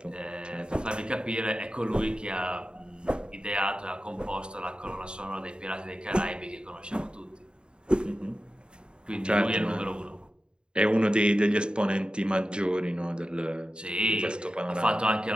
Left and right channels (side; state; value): left; late; 0.051 ms